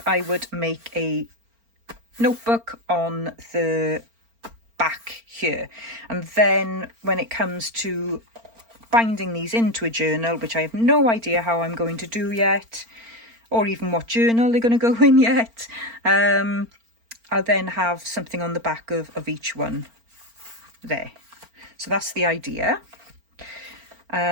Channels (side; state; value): left; late; 4.4 ms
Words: I would make a notebook on the back here. And then when it comes to binding these into a journal, which I have no idea how I'm going to do yet, or even what journal they're going to go in yet, I'll then have something on the back of each one there. So that's the idea.